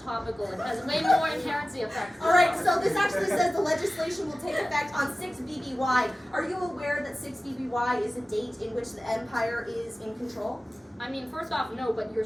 It has way more inherency effects. Alright, so this actually says the legislation will take effect on 6 BBY. Are you aware that 6 BBY is a date in which the Empire is in control? I mean, first off, no, but your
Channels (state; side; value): normal; both; correlation 0.96